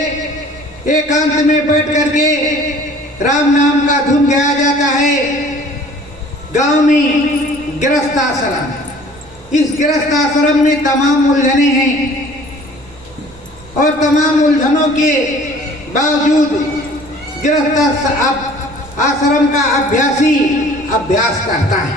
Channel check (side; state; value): right; noise; rumble, 24 dB below the sound